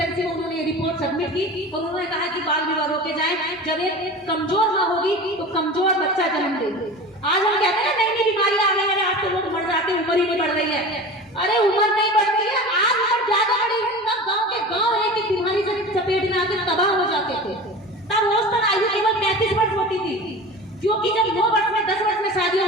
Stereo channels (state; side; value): normal; both; correlation 0.34